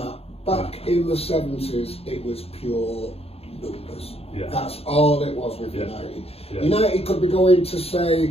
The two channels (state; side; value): late; right; 0.29 ms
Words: Back in the 70s, it was pure numbers. Yeah. That's all it was with United. Yeah. United could be going to